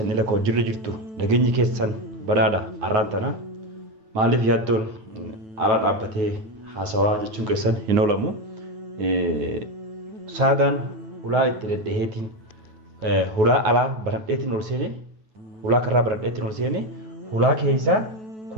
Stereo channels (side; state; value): left; late; 9.2 ms